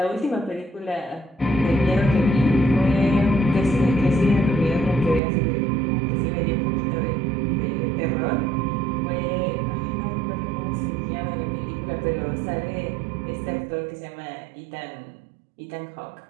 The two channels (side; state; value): left; drops out; at 5.2 s